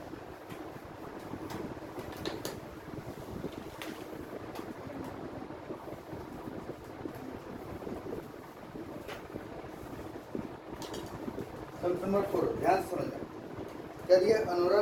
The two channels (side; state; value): both; identical; correlation 1.00